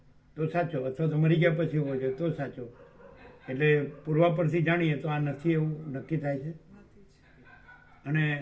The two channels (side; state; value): both; identical; correlation 1.00